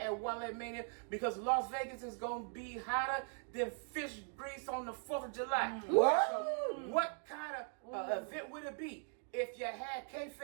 Wale Mania because Las Vegas is going to be hotter than fish grease on the 4th of July. What? So what kind of event would it be if you had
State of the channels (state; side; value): silent; left; 51 dB below the other